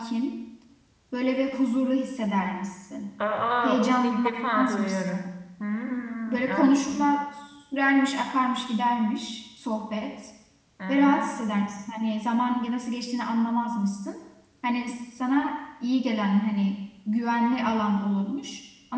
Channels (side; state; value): both; identical; correlation 1.00